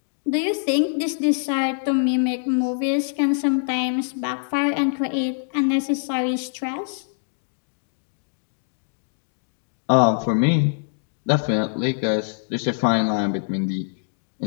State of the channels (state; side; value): silent; right; digital silence